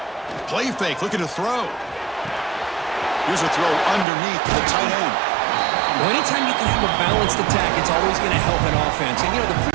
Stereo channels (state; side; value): drops out; left; at 4.0 s